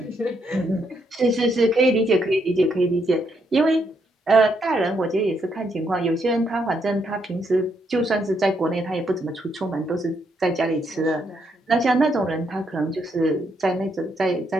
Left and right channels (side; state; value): both; normal; correlation 0.76